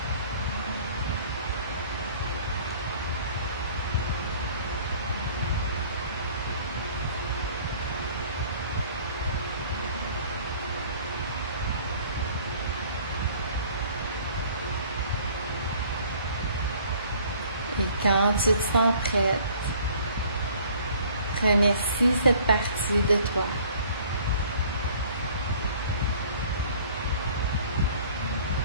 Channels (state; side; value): inverted; both; correlation -0.53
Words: Et quand tu te sens prête, remercie cette partie de toi.